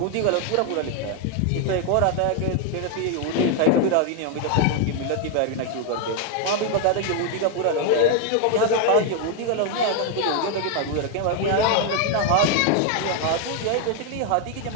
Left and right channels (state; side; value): different; both; correlation 0.01